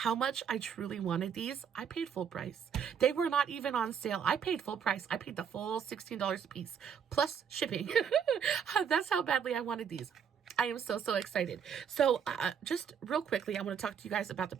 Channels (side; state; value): left; quieter; 7.5 dB